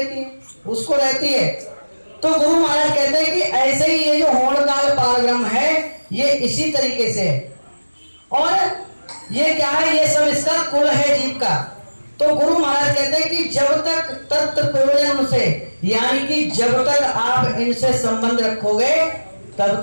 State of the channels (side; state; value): both; inverted; correlation -1.00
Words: है? उसको रहती है। तो गुरु महाराज कहते हैं कि ऐसे ही ये जो होणकाल पारब्रह्म है, ये इसी तरीके से है। और ये क्या है? ये सब इसका कुल है जीव का। तो गुरु महाराज कहते हैं कि जब तक तत्व प्रयोजन उनसे, यानी कि जब तक आप इनसे संबंध रखोगे तब